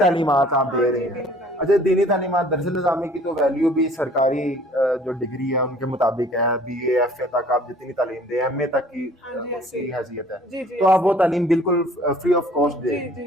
आप हाँ दे रही जी, हैं। दीन तालीम। अच्छा, दीनी तालीमात दरअसल निज़ामी की तो वैल्यू भी सरकारी जो डिग्री है उनके मुताबिक है, BA FA तक आप जितनी तालीम दें, MA तक की हाँ जी, ऐसे उनकी ही। हैसियत है। जी जी, तो आप ऐसे वो ही। तालीम बिल्कुल फ्री ऑफ कॉस्ट दे जी रही हैं।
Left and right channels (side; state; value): both; normal; correlation 0.53